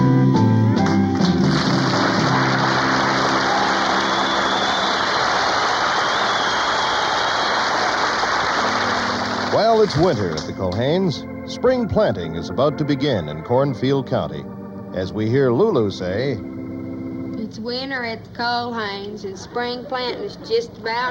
Well, it's winter at the Culhanes. Spring planting is about to begin in Cornfield County. As we hear Lulu say, It's winter at the Culhanes, and spring planting is just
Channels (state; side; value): identical; both; correlation 1.00